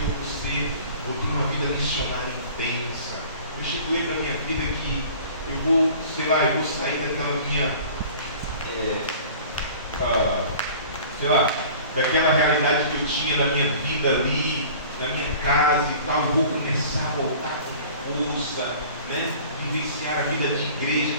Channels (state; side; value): inverted; both; correlation -0.45